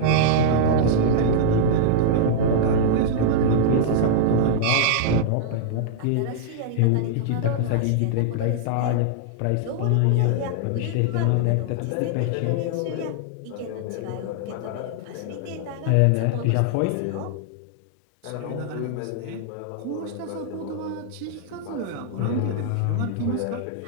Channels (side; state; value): both; different; correlation -0.01